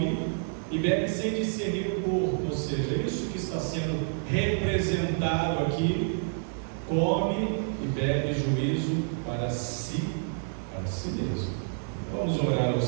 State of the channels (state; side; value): silent; left; 58 dB below the other